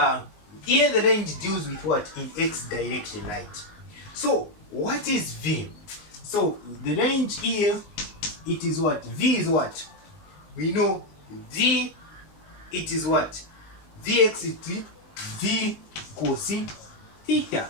here the range deals with what? In x direction, right? So what is V? So the range here, it is what? V is what? We know V, it is what? Vx is V cos theta.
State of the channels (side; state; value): right; late; 19 ms